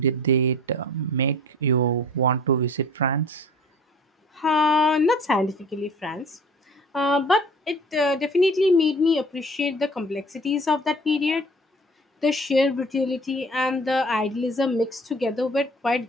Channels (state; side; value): normal; both; correlation 0.47